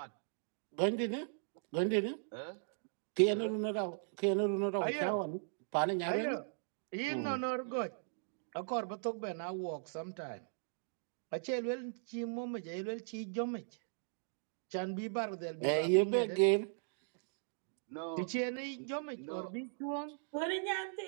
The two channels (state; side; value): silent; left; digital silence